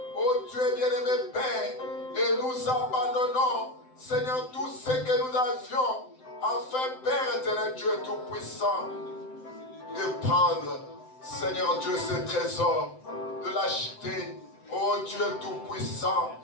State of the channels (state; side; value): late; right; 7.8 ms